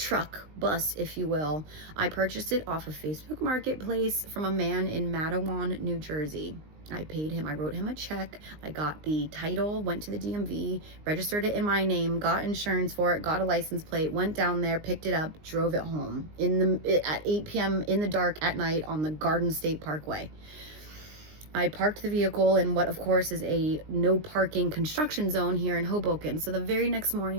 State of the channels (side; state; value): left; late; 19 ms